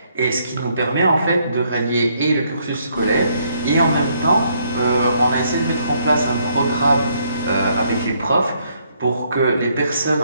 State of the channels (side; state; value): both; inverted; correlation -0.71